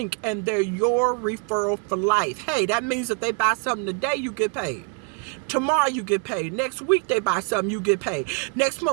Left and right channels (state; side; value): quieter; left; 33.7 dB